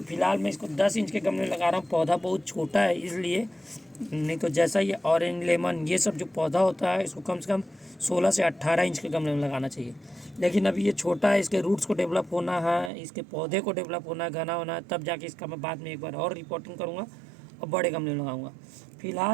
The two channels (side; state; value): left; drops out; at 12.9 s